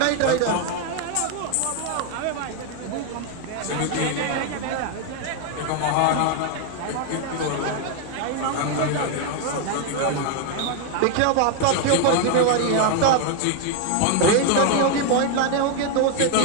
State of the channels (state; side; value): different; both; correlation 0.00